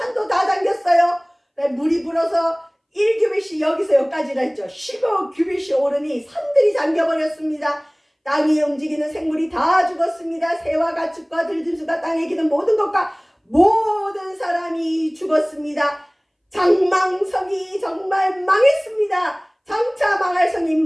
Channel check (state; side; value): identical; both; correlation 1.00